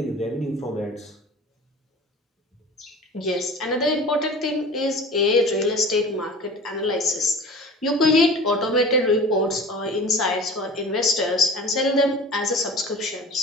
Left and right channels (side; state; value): both; normal; correlation 0.38